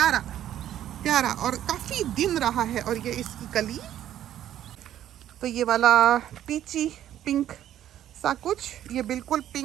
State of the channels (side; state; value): left; quieter; 11.6 dB